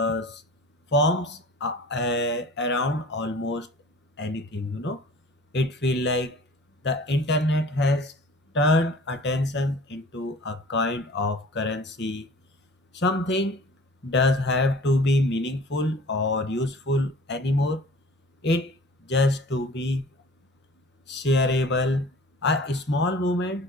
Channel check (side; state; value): both; normal; correlation 0.45